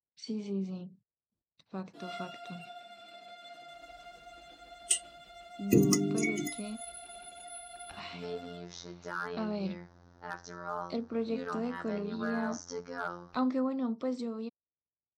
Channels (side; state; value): both; identical; correlation 1.00